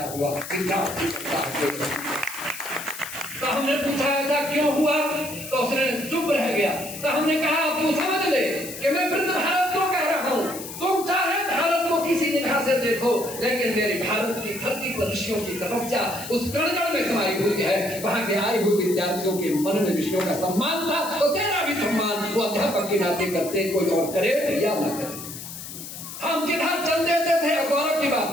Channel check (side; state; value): left; noise; hiss, 11 dB below the sound